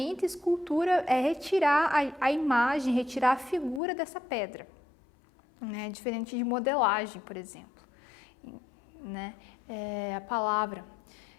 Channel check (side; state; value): right; drops out; at 3.8 s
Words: escultura é retirar a imagem, retirar a figura dessa pedra, né? Diferente de modelagem, por exemplo, né? A palavra.